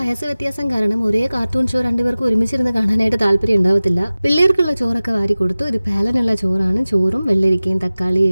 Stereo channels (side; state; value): both; inverted; correlation -0.97